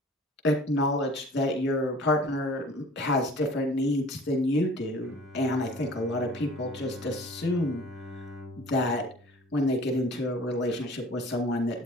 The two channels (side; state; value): both; normal; correlation 0.48